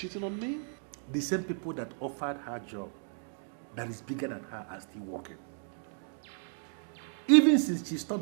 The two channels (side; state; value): left; silent; digital silence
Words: on me? The same people that offered her job that is bigger than her are still working. Even since she